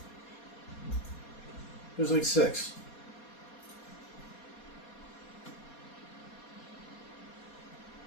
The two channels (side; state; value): right; late; 4.2 ms